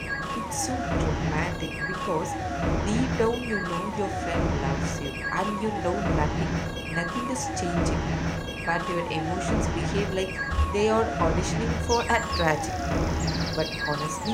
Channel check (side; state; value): both; identical; correlation 1.00